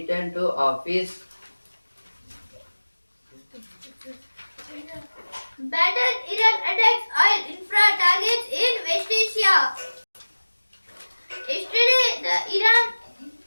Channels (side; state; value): both; inverted; correlation -1.00